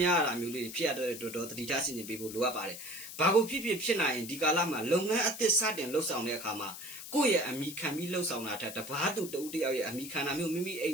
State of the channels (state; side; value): noise; left; hiss, 11 dB below the sound